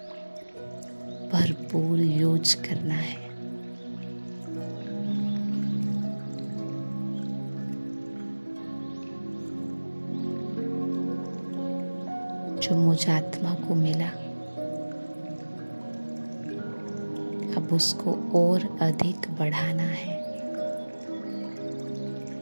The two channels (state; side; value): inverted; both; correlation -1.00